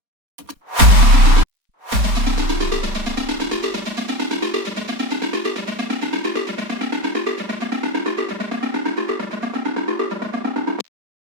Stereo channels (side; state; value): left; late; 4.2 ms